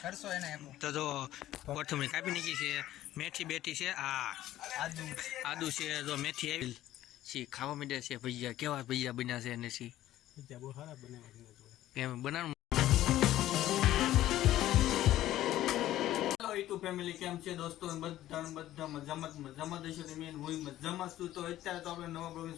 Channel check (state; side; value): quieter; right; 13.9 dB